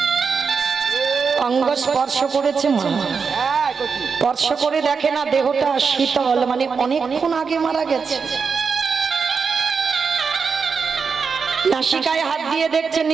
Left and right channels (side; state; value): left; quieter; 5.5 dB